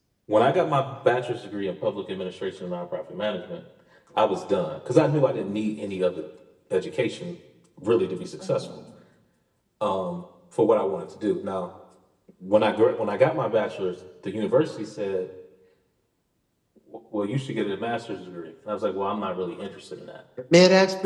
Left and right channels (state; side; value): identical; both; correlation 1.00